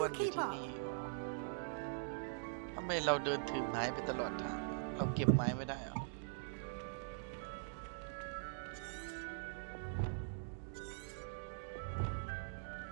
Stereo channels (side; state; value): left; silent; digital silence